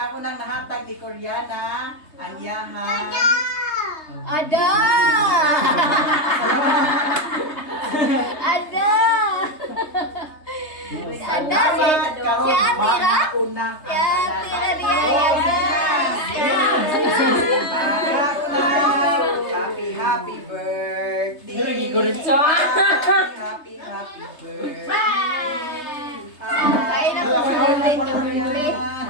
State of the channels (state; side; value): late; right; 3.3 ms